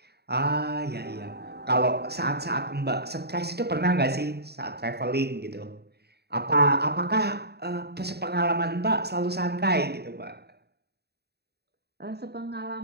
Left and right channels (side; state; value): left; late; 0.47 ms